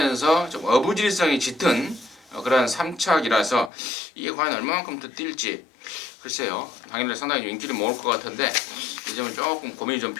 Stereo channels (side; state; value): right; drops out; at 3.7 s